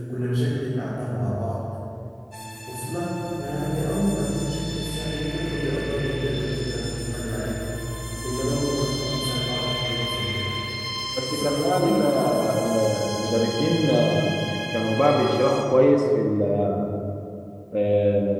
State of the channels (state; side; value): identical; both; correlation 1.00